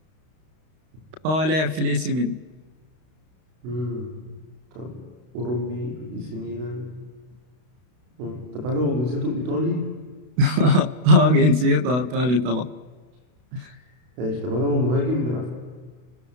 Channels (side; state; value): left; late; 32 ms